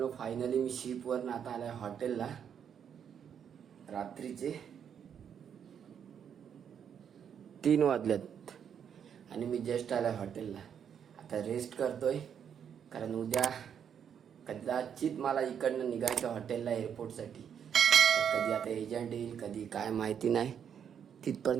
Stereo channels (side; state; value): left; quieter; 8.1 dB